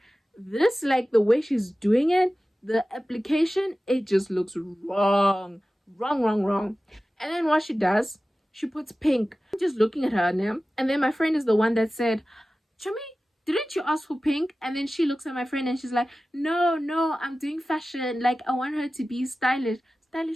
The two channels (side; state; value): both; normal; correlation 0.96